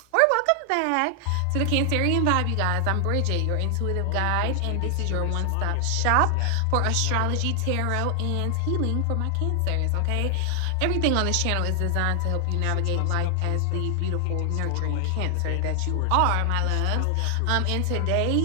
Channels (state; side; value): different; both; correlation 0.00